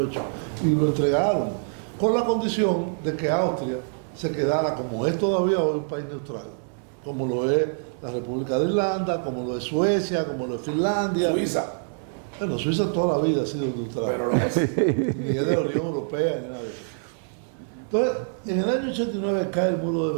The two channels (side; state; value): left; silent; digital silence